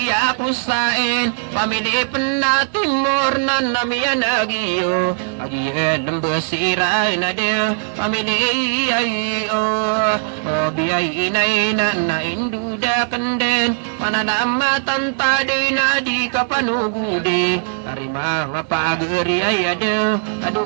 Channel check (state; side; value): silent; left; digital silence